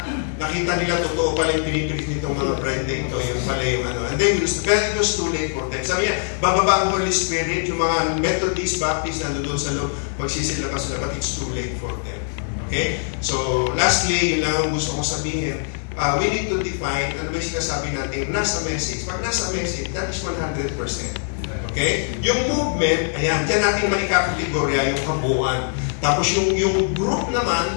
nila totoo pala yung pinipilit nitong mga bride na ito, yung pala yung ano. And then, it was too late for them. Sabi niya, bababa ang Holy Spirit, yung mga Methodist, Baptist, nandun sa loob, magsisilakas sila, but it's too late for them. Okay? So, lastly, yun lang ang gusto kong sabihin. We need to define, ano ba yung sinasabi natin, nasa message. Pag nasa message, that is 100%. Okay? Yung movement, ayan, dyan natin maikakategorya yung kabuuan. Tapos yung group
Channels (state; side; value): silent; right; digital silence